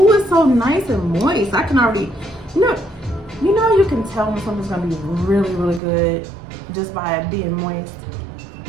it's so nice and moist. I can already, you can tell when something's gonna be really, really good just by it being moist.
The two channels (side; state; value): left; drops out; at 5.8 s